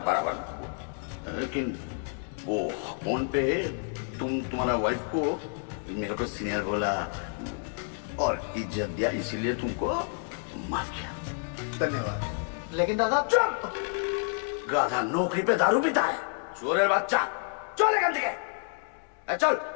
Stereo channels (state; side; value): silent; right; 56 dB below the other